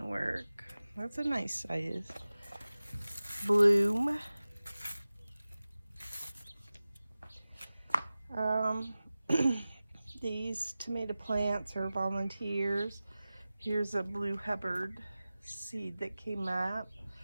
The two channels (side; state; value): both; inverted; correlation -0.96